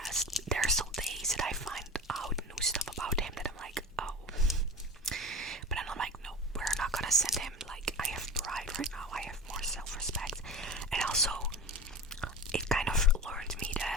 There are still days that I find out new stuff about him that I'm like, oh. But then I'm like, no, we're not gonna send him. Like, I have pride right now. I have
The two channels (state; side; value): normal; both; correlation 0.31